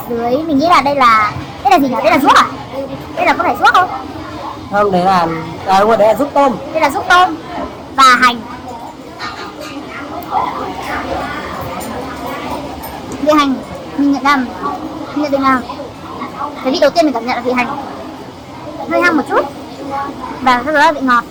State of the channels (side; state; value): both; identical; correlation 1.00